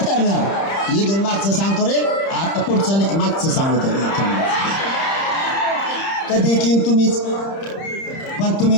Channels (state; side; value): late; right; 30 ms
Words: करणार. इथून मागचं सांगतो रे, आता पुढचं नाही, मागचं सांगतो. कधी किंग तुम्हीच, पण